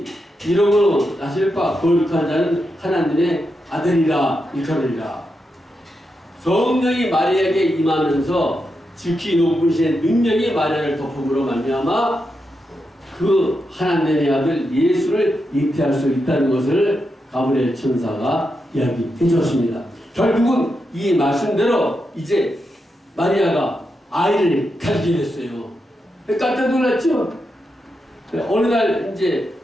이러므로 나실 바 거룩한 자는 하나님의 아들이라 일컬으리라. 성령이 마리아에게 임하면서 지극히 높으신 능력이 마리아를 덮음으로 말미암아 그 하나님의 아들 예수를 잉태할 수 있다는 것을 가브리엘 천사가 이야기해 주었습니다. 결국은 이 말씀대로 이제 마리아가 아이를 가지게 됐어요. 깜짝 놀랐죠? 어느 날 이제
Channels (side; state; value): both; normal; correlation 0.86